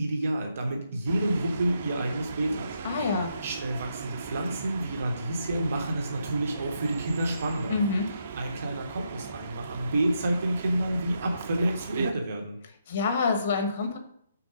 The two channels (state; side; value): inverted; both; correlation -0.79